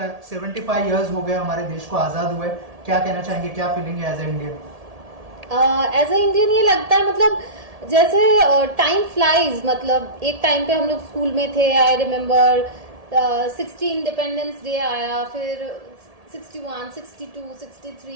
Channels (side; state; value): left; late; 1.7 ms